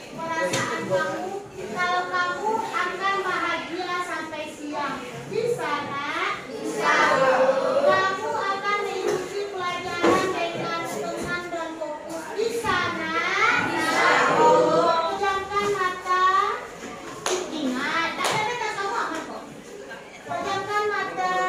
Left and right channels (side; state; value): both; identical; correlation 1.00